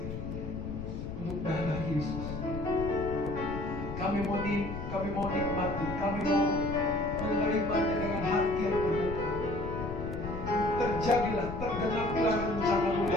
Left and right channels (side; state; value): left; noise; rumble, 7 dB below the sound